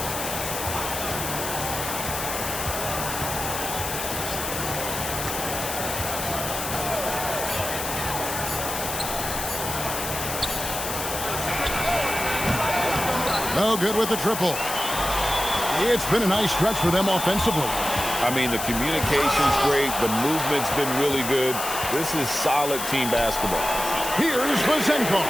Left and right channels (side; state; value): left; noise; hiss, 5 dB below the sound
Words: No good with the triple. It's been a nice stretch for them offensively. I mean, the communication's great. The movement's been really good. This is solid team basketball. Here's Vezenkov.